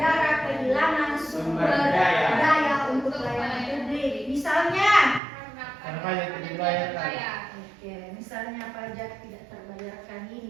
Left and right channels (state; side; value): drops out; left; at 5.2 s